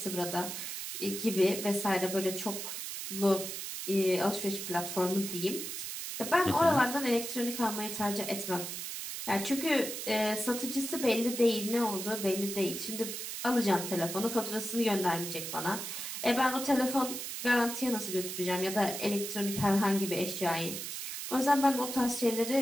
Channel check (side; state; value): right; noise; hiss, 6 dB below the sound